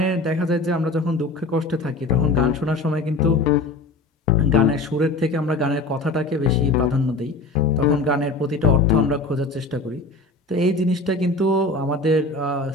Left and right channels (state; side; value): quieter; right; 3.2 dB